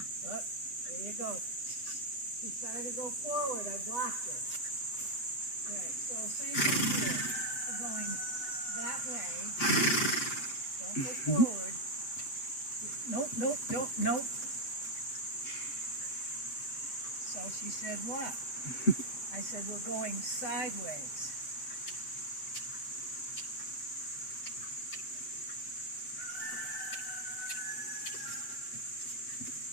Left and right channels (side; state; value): right; late; 8.2 ms